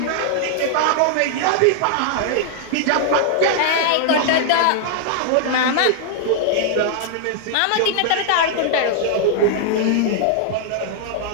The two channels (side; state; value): both; different; correlation 0.00